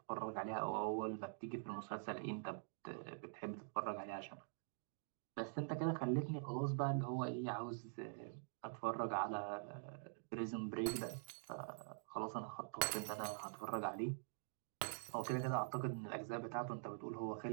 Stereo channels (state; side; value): silent; left; digital silence